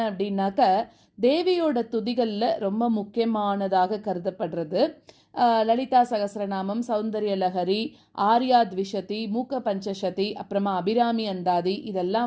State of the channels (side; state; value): both; identical; correlation 1.00